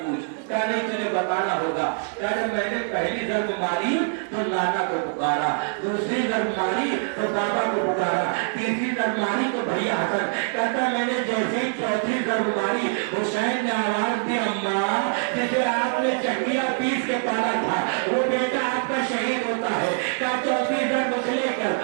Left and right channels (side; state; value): left; silent; 62 dB below the other